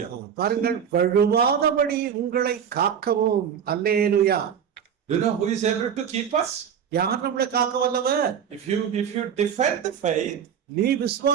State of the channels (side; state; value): left; quieter; 8.1 dB